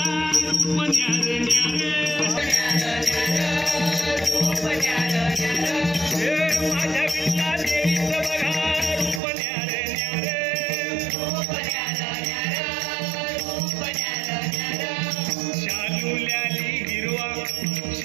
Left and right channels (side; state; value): left; drops out; at 9.2 s